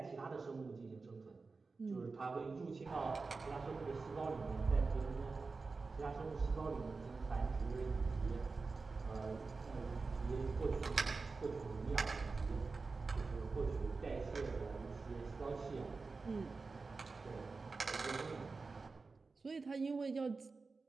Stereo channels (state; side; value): quieter; left; 4.1 dB